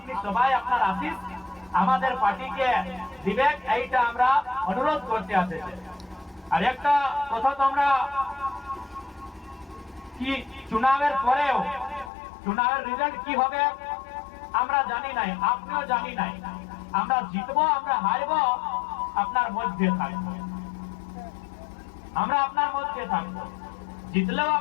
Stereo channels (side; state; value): right; drops out; at 12.1 s